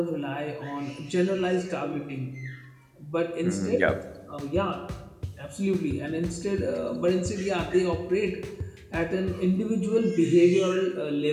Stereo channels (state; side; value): identical; both; correlation 1.00